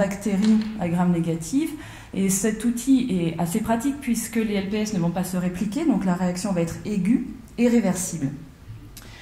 à gram négatives. Et cet outil est assez pratique puisque les LPS ne vont pas se répliquer, donc la réaction va être aiguë et réversible.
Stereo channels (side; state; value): both; identical; correlation 1.00